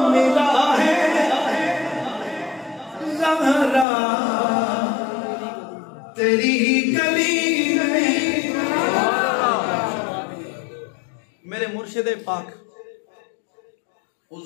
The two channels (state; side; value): drops out; right; at 3.9 s